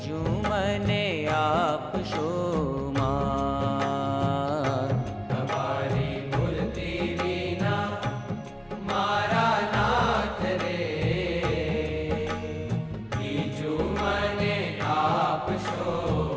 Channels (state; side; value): identical; both; correlation 1.00